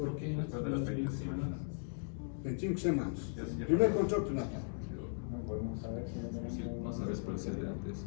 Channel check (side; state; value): right; silent; digital silence